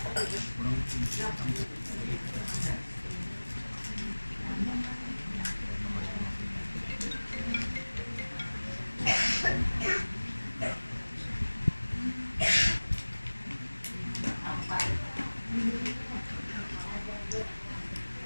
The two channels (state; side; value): inverted; both; correlation -1.00